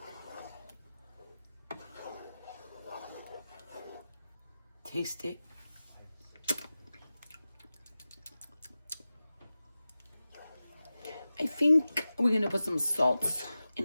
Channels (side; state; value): both; inverted; correlation -0.95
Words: Taste it. I think we're gonna put some salt